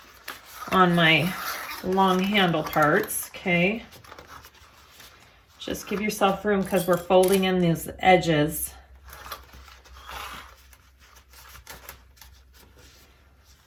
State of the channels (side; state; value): both; identical; correlation 1.00